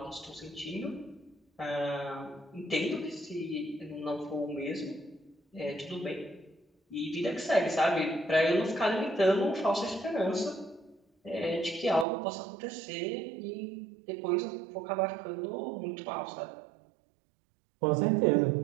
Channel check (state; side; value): drops out; left; at 12.1 s